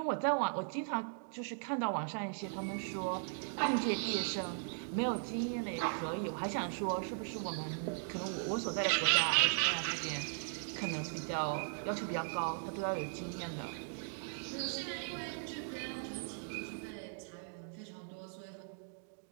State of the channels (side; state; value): left; silent; digital silence